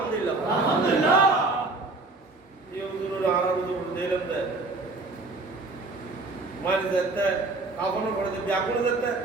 আলহামদুলিল্লাহ এই হুজুরের আরাম তো দিলাম দে মারি যেতে কাফন করে দে ব্যাকুল যেতে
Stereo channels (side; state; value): left; quieter; 3.4 dB